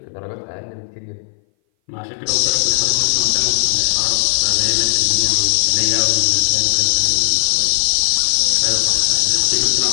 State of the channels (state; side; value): silent; right; 60 dB below the other